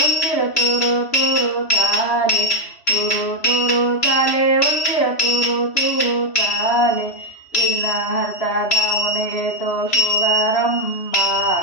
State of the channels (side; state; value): right; late; 3.0 ms